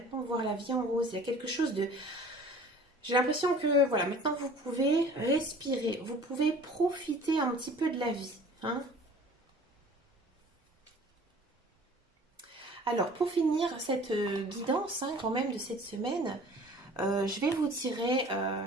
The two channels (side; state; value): both; normal; correlation 0.47